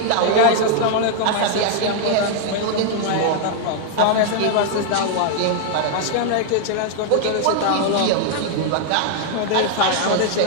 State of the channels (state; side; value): different; both; correlation 0.00